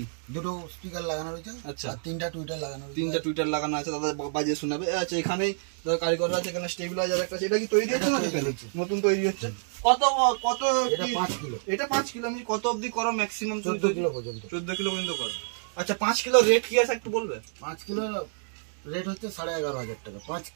দুটো স্পিকার লাগানো রয়েছে। আচ্ছা, আর 3টা টুইটার লাগানো রয়েছে। 3টা টুইটার লাগানো আছে, দাদা বাজিয়ে শোনাবে। আচ্ছা, এখানেই দাদা কারিগর আছে, এখানে স্টেবিলাইজার একটা আছে। এটা কি তৈরি হচ্ছে না নতুন তৈরি হচ্ছে? কত কত? এটা 5 কিলো। এটা 5 কিলো। আমি কত অবধি করো ম্যাক্সিমাম? 14 কিলো পর্যন্ত। 14 কিলো পর্যন্ত করো। আচ্ছা, 5 কিলো রেট কি আছে একটু বলবে? 5 কিলো রেট হচ্ছে 11,500 টাকা। 5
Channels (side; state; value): left; silent; digital silence